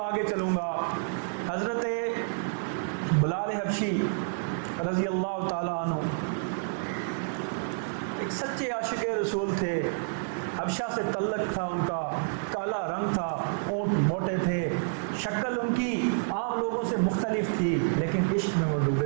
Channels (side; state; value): left; silent; digital silence